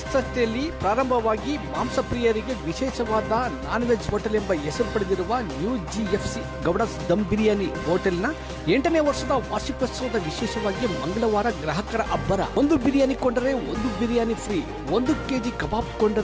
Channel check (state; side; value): identical; both; correlation 1.00